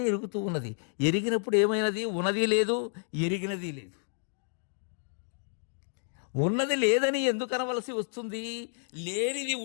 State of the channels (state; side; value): silent; right; 58 dB below the other